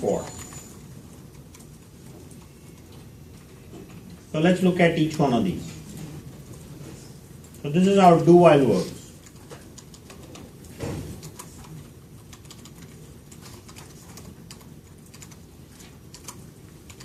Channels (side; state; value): both; identical; correlation 1.00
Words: So let's look at each one of these. So this is how do while works.